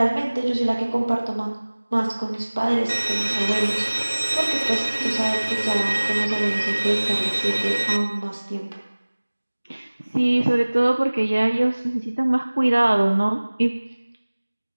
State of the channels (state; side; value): inverted; both; correlation -1.00